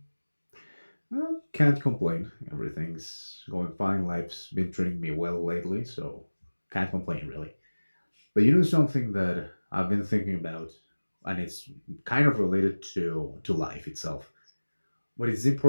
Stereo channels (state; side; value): inverted; both; correlation -1.00